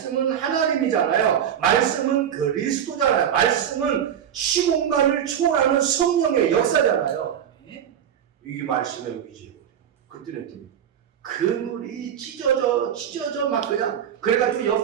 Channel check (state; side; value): quieter; left; 9.3 dB